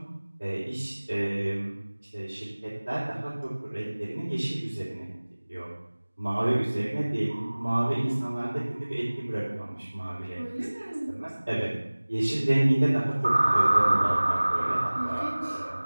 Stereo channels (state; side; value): inverted; both; correlation -1.00